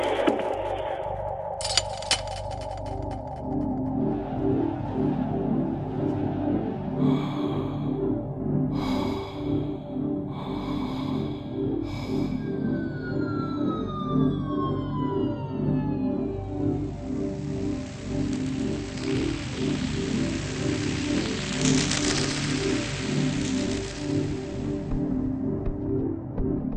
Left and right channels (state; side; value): identical; both; correlation 1.00